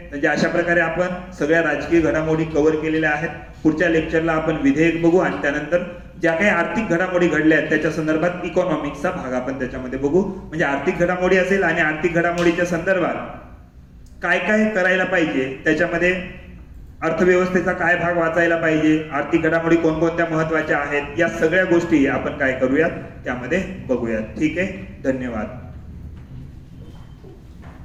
म्हणजे अशा प्रकारे आपण सगळ्या राजकीय घडामोडी कव्हर केलेल्या आहेत. पुढच्या लेक्चरला आपण विधेयक बघू आणि त्यानंतर ज्या काही आर्थिक घडामोडी घडल्या आहेत त्याच्या संदर्भात इकॉनॉमिक्सचा भाग आपण त्याच्यामध्ये बघू. म्हणजे आर्थिक घडामोडी असेल आणि आर्थिक घडामोडीच्या संदर्भात काय काय करायला पाहिजे त्याच्यामध्ये अर्थव्यवस्थेचा काय भाग वाचायला पाहिजे, आर्थिक घडामोडी कोणकोणत्या महत्वाच्या आहेत, या सगळ्या गोष्टी आपण काय करूयात त्यामध्ये बघूयात. ठीक आहे, धन्यवाद.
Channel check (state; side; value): identical; both; correlation 1.00